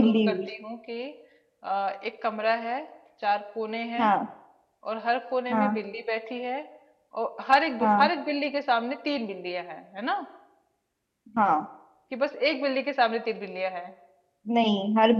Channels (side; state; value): both; identical; correlation 1.00